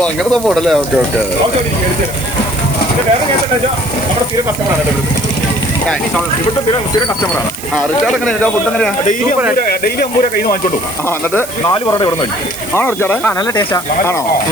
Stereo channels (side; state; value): right; noise; hiss, 12 dB below the sound